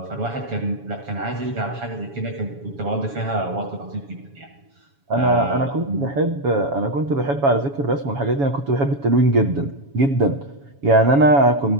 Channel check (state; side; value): late; left; 7.2 ms